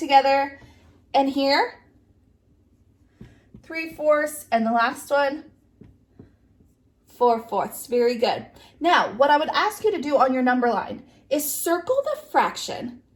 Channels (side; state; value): both; identical; correlation 1.00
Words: And here, 3/4, and the last one, 4/4. Very good. Now, what I would ask you to do on your number line is circle the fraction